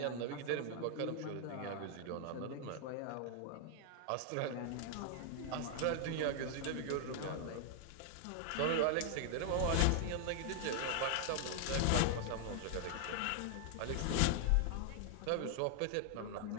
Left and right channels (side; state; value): both; different; correlation 0.00